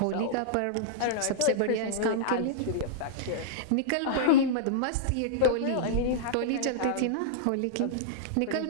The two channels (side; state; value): both; different; correlation -0.02